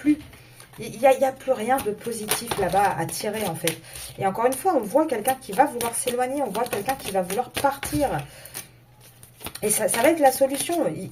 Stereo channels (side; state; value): both; identical; correlation 1.00